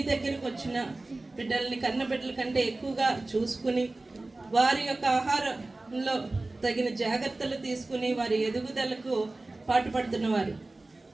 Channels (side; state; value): left; quieter; 3.0 dB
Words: దగ్గరకు వచ్చిన బిడ్డల్ని కన్నబిడ్డల కంటే ఎక్కువగా చూసుకుని వారి యొక్క ఆహారంలో తగిన జాగ్రత్తలు తీసుకుని వారి ఎదుగుదలకు పాటుపడుతున్నవారు,